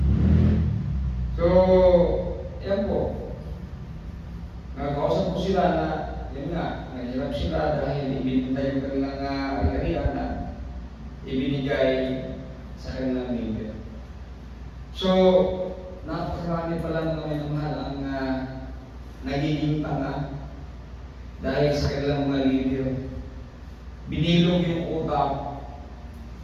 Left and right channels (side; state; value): both; identical; correlation 1.00